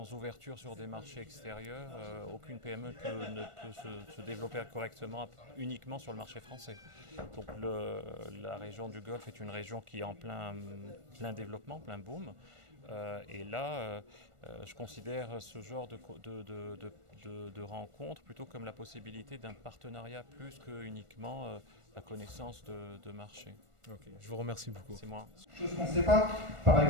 ouverture sur des marchés extérieurs, aucune PME ne peut se développer correctement uniquement sur le marché français. Donc la région du Golfe est une région qui est en plein développement, plein boom. Et là, je considère ce genre de rencontre plutôt comme la possibilité d'un partenariat plus que uniquement la connaissance de marché. Ok, je vous remercie beaucoup. C'est moi. Chose qu'on ne sait pas, par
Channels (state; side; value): late; left; 1.4 ms